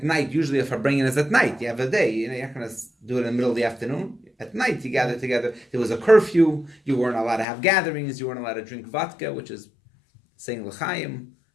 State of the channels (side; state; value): right; drops out; at 7.5 s